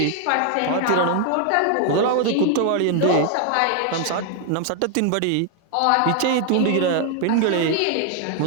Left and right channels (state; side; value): different; both; correlation 0.01